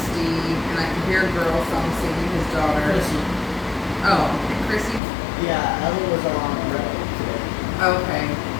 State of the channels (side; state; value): right; drops out; at 5.0 s